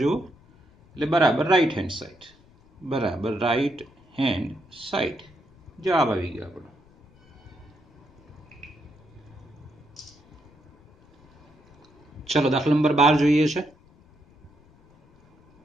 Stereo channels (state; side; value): noise; left; rumble, 28 dB below the sound